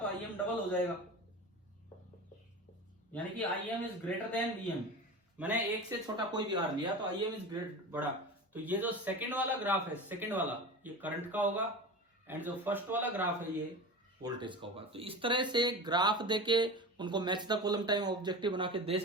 आई एम डबल हो जाएगा, यानी कि I M is greater than V M. मैंने एक से छोटा कोई भी आर लिया तो आई एम इज ग्रेट बड़ा। तो ये जो सेकंड वाला ग्राफ है, सेकंड वाला, ये करंट का होगा, एंड जो फर्स्ट वाला ग्राफ है ये वोल्टेज का होगा। तो इस तरह से ग्राफ देके उनको match the column time objective बना के दे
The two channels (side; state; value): both; normal; correlation 0.30